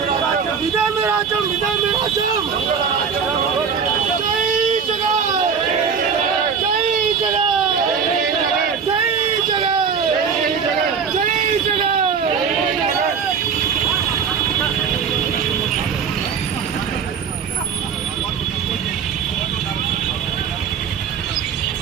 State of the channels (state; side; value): quieter; left; 6.5 dB